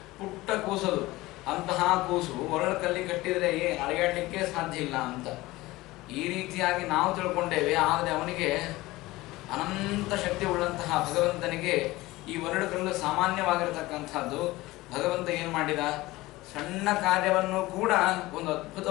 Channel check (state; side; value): quieter; right; 19.2 dB